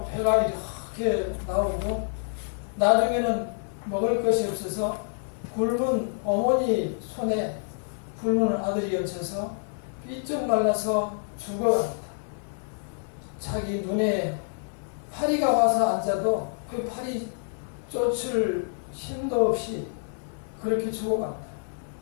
배가 이렇게 나오고 나중에는 먹을 것이 없어서 굶은 어머니 손에 굶은 아들이 얹혀서 삐쩍 말라서 죽어갑니다. 자기 눈에 파리가 와서 앉아도 그 파리 쫓을 힘도 없이 그렇게 죽어갑니다.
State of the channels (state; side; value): silent; right; digital silence